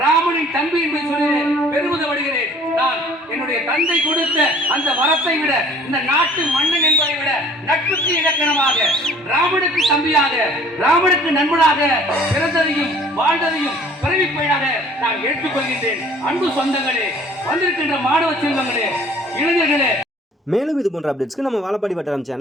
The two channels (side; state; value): both; normal; correlation 0.53